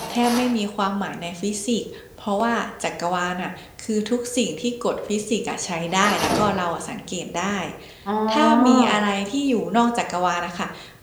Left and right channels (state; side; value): identical; both; correlation 1.00